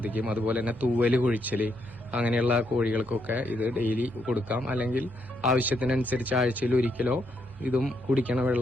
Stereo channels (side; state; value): both; normal; correlation 0.77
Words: അതുപോലെ തന്നെ തൂവല് കൊഴിച്ചല് അങ്ങനെയുള്ള കോഴികൾക്കൊക്കെ ഇത് ഡെയിലി കൊടുക്കാം. അല്ലെങ്കിൽ ആവശ്യത്തിനനുസരിച്ച് ആഴ്ചയിൽ ഒരിക്കലോ ഇതും കുടിക്കണ